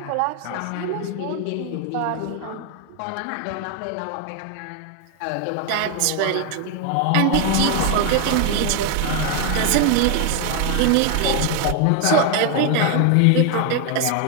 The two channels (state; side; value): different; both; correlation 0.01